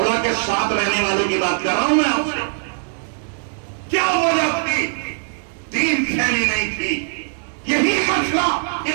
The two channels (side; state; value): left; silent; digital silence